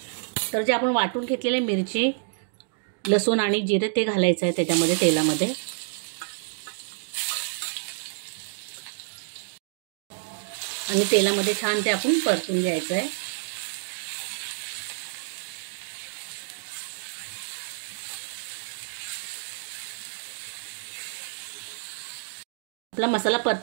तर जे आपण वाटून घेतलेले मिरची, लसूण आणि जिरे ते घालायचं आहे त्याच्यामध्ये तेलामध्ये. आणि तेलामध्ये छान ते आपण परतून घ्यायचं आहे. आपला मसाला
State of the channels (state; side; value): silent; left; digital silence